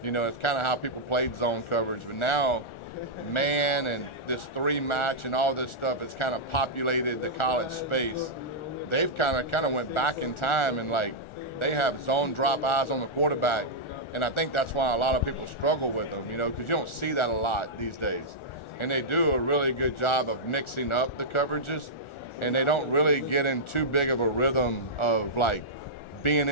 You know, it's kind of how people played zone coverage. But now, man and this three match and all this stuff has kind of populated the college space. They've kind of went back in time, and like, they have zone drop eyes on the quarterback. And I think that's why a lot of people struggle with them, you know, because you don't see that a lot these days. And they do a really good job of mixing up the coverages, and they don't really get in too big of a rhythm of like being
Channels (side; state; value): right; late; 1.4 ms